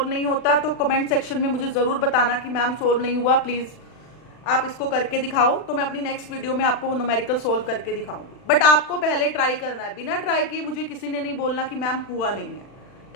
नहीं होता तो कमेंट सेक्शन में मुझे ज़रूर बताना कि मैम सोल्व नहीं हुआ, प्लीज़ आप इसको करके दिखाओ, तो मैं अपनी नेक्स्ट वीडियो में आपको वो न्यूमेरिकल सोल्व करके दिखाऊंगी, बट आपको पहले ट्राई करना है, बिना ट्राई किए मुझे किसी ने नहीं बोलना कि मैम हुआ नहीं है।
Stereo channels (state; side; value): late; right; 40 ms